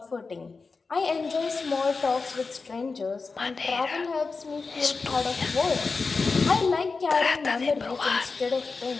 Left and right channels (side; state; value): right; quieter; 4.3 dB